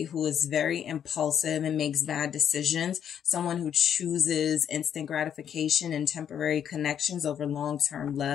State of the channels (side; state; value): right; quieter; 8.9 dB